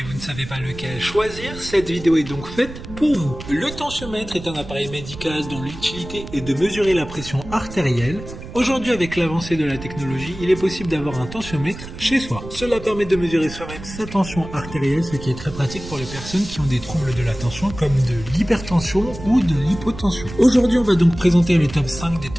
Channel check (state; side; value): noise; right; rumble, 12 dB below the sound